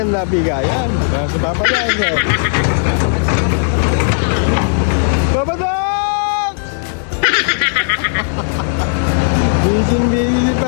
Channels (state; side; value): silent; right; digital silence